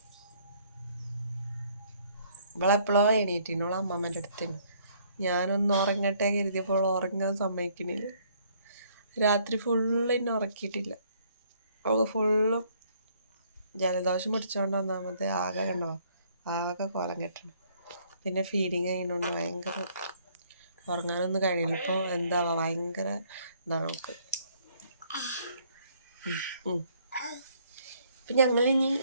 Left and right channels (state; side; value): inverted; both; correlation -0.64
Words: ഇവളെപ്പോഴോ എണീറ്റിനോളെ അമ്മമ്മേൻ്റെ അടുത്തിന്. ഞാനൊന്ന് ഉറങ്ങട്ടെ കരുതിയപ്പോൾ ഉറങ്ങാൻ സമ്മതിക്കണില്ല. രാത്രി ഫുള്ളിന്നെ ഉറക്കിയിട്ടില്ല. അവൾക്ക് ഫുള്ളും ജലദോഷം പിടിച്ചോണ്ട് ഒന്നാമത് ആകെ കോലം കെട്ടണം. പിന്നെ ഫീഡിങ് ചെയ്യുന്നതുകൊണ്ട് ഭയങ്കര ഉറങ്ങാനൊന്നും കഴിയില്ല. ഇപ്പോൾ എന്താവാ ഭയങ്കര ഇതാണ് അവൾക്ക്. ഇപ്പം ഞങ്ങളിനി